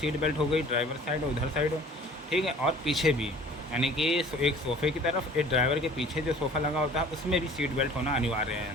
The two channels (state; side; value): normal; both; correlation 0.49